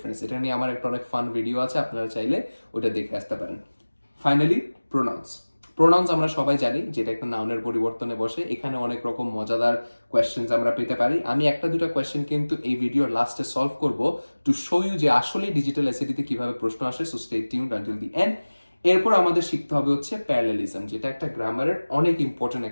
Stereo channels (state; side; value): inverted; both; correlation -1.00